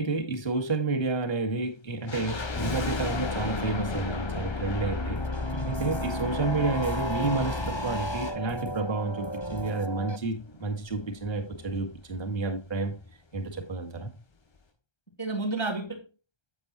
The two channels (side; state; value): right; late; 1.3 ms